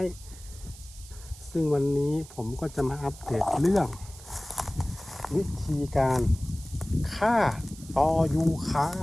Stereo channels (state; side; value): noise; right; hiss, 18 dB below the sound